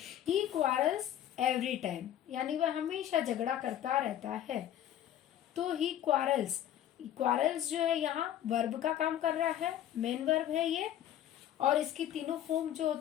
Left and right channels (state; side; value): quieter; right; 11.4 dB